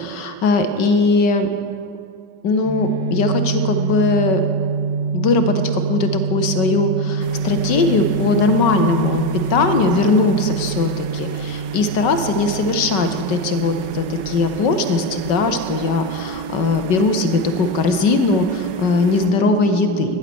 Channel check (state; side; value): late; right; 5.3 ms